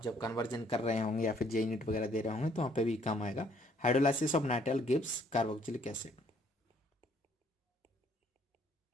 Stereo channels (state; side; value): normal; both; correlation 0.64